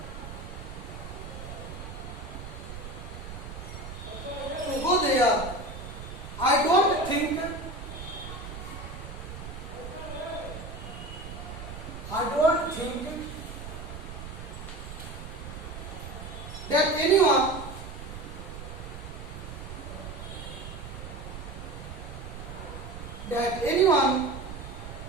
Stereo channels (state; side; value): noise; right; rumble, 10 dB below the sound